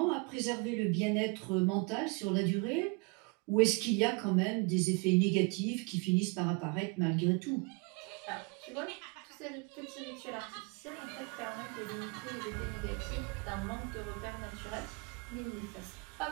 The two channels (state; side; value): quieter; left; 31.2 dB